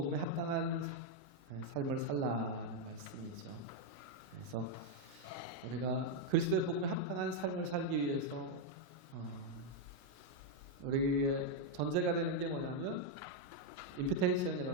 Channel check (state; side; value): normal; both; correlation 0.00